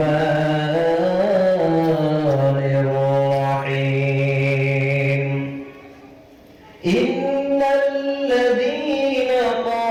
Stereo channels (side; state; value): both; identical; correlation 1.00